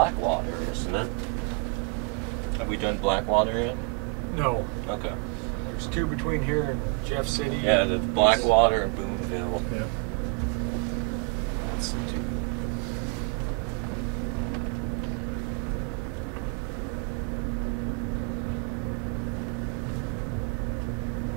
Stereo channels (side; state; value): left; quieter; 32.7 dB